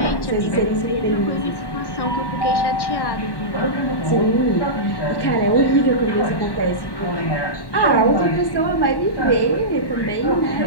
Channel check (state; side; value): late; right; 1.1 ms